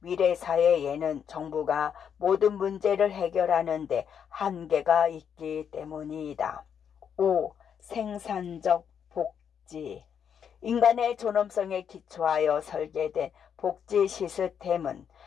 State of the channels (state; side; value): quieter; right; 7.9 dB